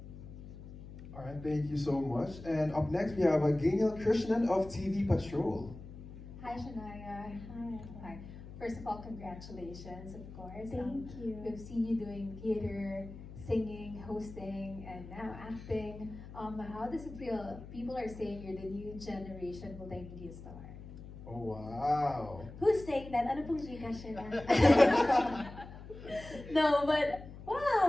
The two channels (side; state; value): left; noise; hum, 14 dB below the sound